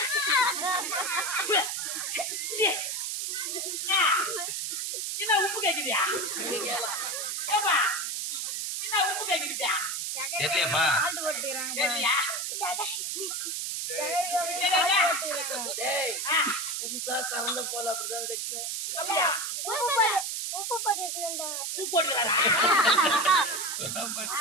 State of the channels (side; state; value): right; noise; hiss, 2 dB below the sound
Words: என்ன உப்பு கேக்குதியா? என்ன உப்பு கேக்குதியா? தெரியலையாப்பா? தெரியலையா? புதுசா கறந்த போல அப்படிதான் கைக்கும். உப்பு போட்டுக்கிறாரா?